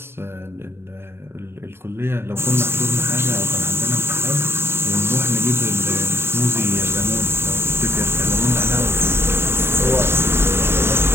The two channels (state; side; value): late; left; 0.11 ms